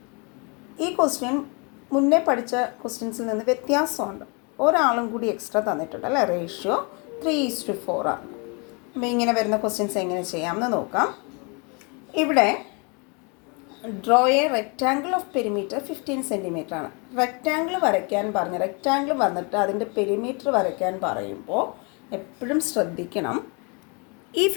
ഈ question മുന്നേ പഠിച്ച ക്വസ്റ്റ്യൻസിൽ നിന്ന് വ്യത്യാസമുണ്ട്. ഒരാളും കൂടി എക്സ്ട്രാ തന്നിട്ടുണ്ട് അല്ലേ. റേഷ്യോ 3:4 ആണ്. അപ്പോൾ ഇങ്ങനെ വരുന്ന ക്വസ്റ്റ്യൻസ് എങ്ങനെ ചെയ്യാമെന്ന് നോക്കാം. ഇവിടെ draw A rectangle of perimeter 15 centimetre ആണ്. റെക്റ്റാങ്കിൾ വരയ്ക്കാൻ പറഞ്ഞ് റെക്റ്റാങ്കിൾ വന്നിട്ട് അതിൻ്റെ പെരിമീറ്റർ വരയ്ക്കാൻ പറയുമ്പോൾ എപ്പോഴും ശ്രദ്ധിക്കണം, ഈ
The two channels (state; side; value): quieter; right; 32.9 dB